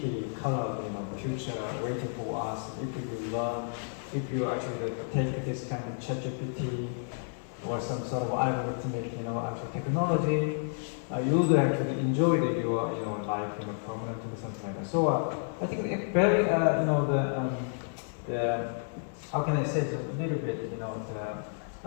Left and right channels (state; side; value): silent; right; 57 dB below the other